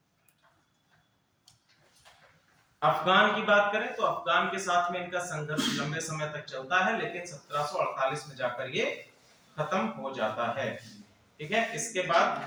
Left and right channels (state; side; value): identical; both; correlation 1.00